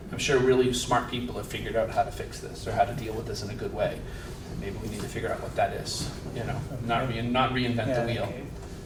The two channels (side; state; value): both; identical; correlation 1.00